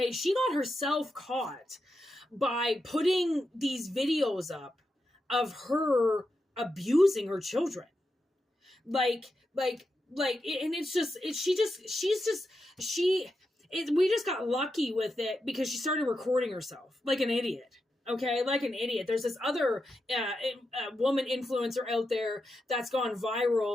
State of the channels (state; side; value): normal; both; correlation 0.87